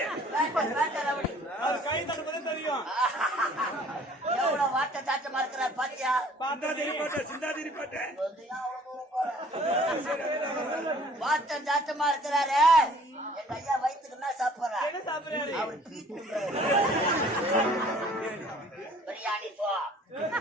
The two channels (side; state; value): both; normal; correlation 0.54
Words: அவர் கை தட்டுறது தெரியும். எவ்வளவு வாட்ட சாட்டமா இருக்கிறார் பாத்தியா? வாட்டம் சாட்டமா இருக்கிறாரு. எங்க ஐயா வயிற்றுக்கு என்ன சாப்பிடுறாரு? என்ன சாப்பிடுறாரு? அவர் பிரியாணி போ